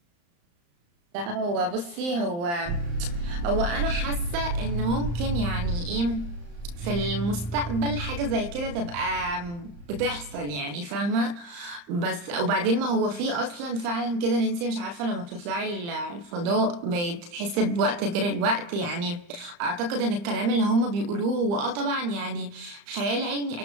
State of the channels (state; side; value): late; left; 35 ms